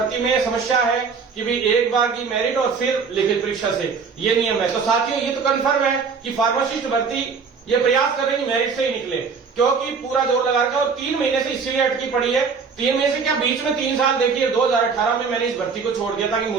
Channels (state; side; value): quieter; left; 5.4 dB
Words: में समस्या है कि भी एक बार की मेरिट और फिर लिखित परीक्षा से ये नियम है। तो साथियों ये तो कंफर्म है कि फार्मासिस्ट भर्ती ये प्रयास कर रहे हैं मेरिट से ही निकले, क्योंकि पूरा जोर लगा रखा है। और 3 महीने से इसीलिए अटकी पड़ी है। 3 महीने से क्या, बीच में 3 साल देखिए 2018 में मैंने इस भर्ती को छोड़ दिया था कि